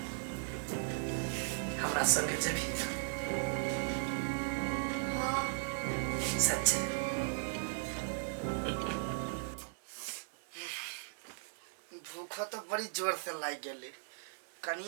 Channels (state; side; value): silent; left; 53 dB below the other